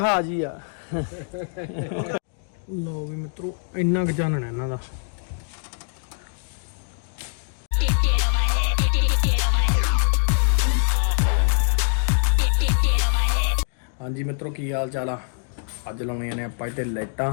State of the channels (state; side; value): silent; right; digital silence